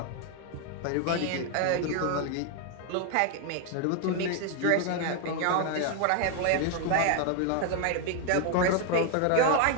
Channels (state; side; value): different; both; correlation 0.01